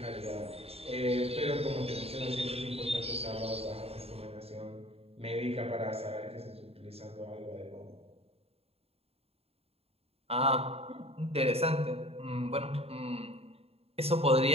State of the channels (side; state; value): left; late; 0.29 ms